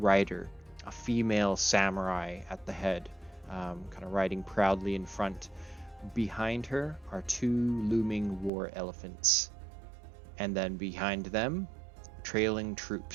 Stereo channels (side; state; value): left; drops out; at 8.5 s